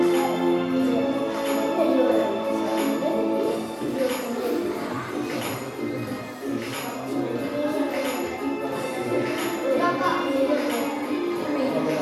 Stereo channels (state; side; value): identical; both; correlation 1.00